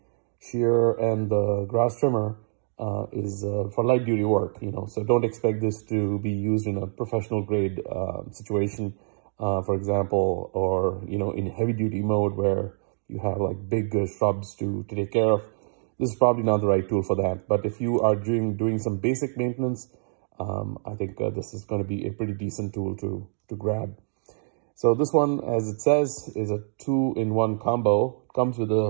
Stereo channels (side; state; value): left; silent; digital silence